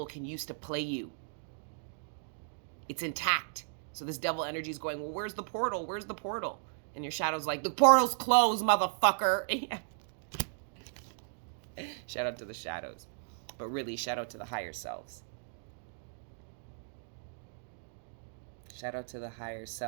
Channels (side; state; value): left; silent; digital silence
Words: can use to play you. It's intact. So this devil energy is going, well, where's the portal? Where's the portal? And your shadow's like, the portal's closed, motherfucker. Shout out to the shadows. But really, shout out to the higher selves. Shout out to the higher